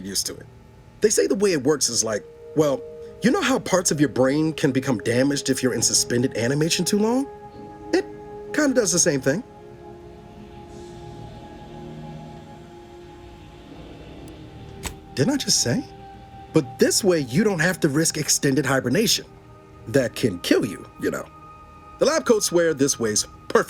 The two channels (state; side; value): identical; both; correlation 1.00